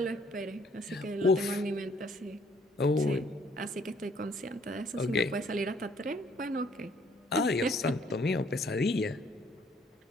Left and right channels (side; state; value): both; normal; correlation 0.63